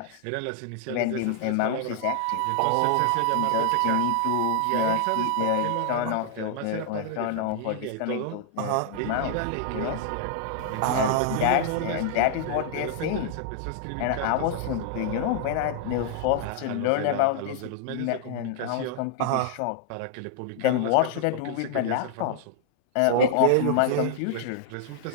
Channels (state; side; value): different; both; correlation -0.01